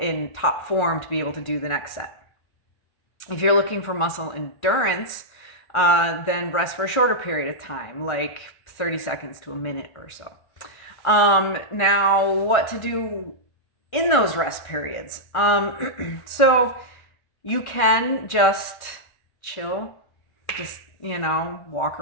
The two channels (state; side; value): late; right; 1.3 ms